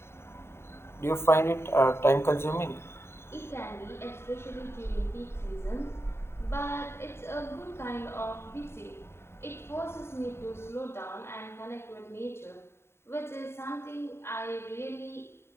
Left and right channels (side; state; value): right; late; 0.12 ms